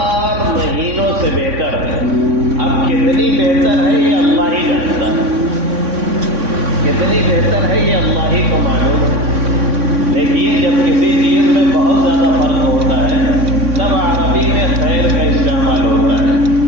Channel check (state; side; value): late; left; 3.6 ms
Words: مہینوں سے بہتر ہے۔ اب کتنی بہتر ہے یہ اللہ ہی جانتا ہے، کتنی بہتر ہے یہ اللہ ہی کو معلوم ہے۔ دیکھیے جب کسی چیز میں بہت زیادہ فرق ہوتا ہے تب عربی میں خیر کا استعمال ہوتا ہے،